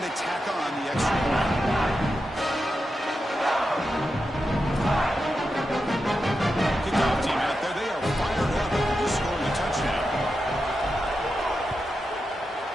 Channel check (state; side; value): normal; both; correlation 0.89